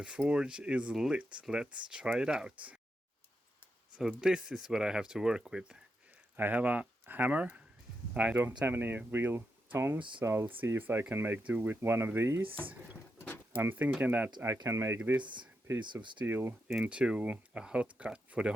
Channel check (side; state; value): both; normal; correlation 0.85